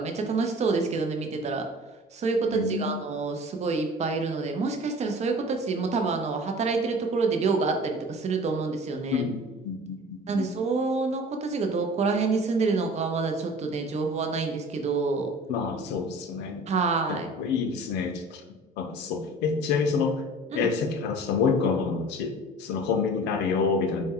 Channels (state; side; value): normal; both; correlation 0.42